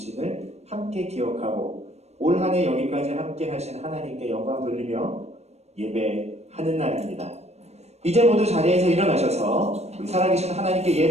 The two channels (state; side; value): late; left; 0.31 ms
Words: 함께 기억하고 올 한 해 여기까지 함께 하신 하나님께 영광 돌리며 예배하는 날입니다. 이제 모두 자리에서 일어나셔서 우리 살아계신 하나님께